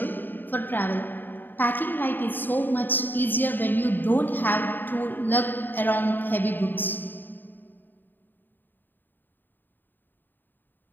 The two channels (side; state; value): right; late; 0.092 ms